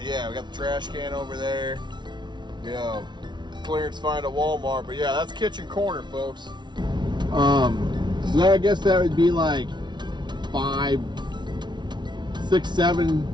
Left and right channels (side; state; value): left; late; 0.21 ms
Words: we got the trash can over there. Clearance find at Walmart. But yeah, that's kitchen corner, folks. So I guess that would be like 5, 6,